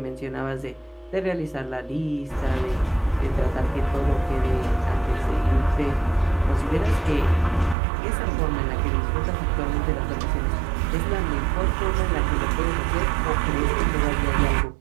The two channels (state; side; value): drops out; left; at 7.8 s